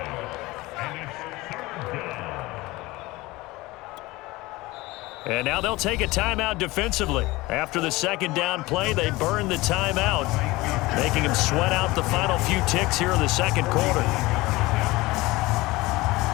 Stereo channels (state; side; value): quieter; right; 20.6 dB